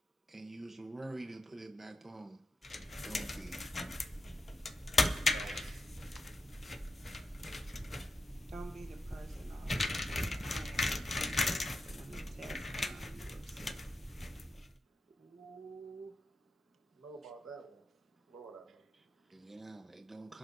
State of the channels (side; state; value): both; normal; correlation 0.88